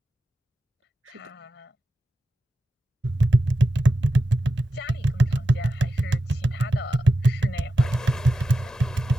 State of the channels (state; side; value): normal; both; correlation 0.90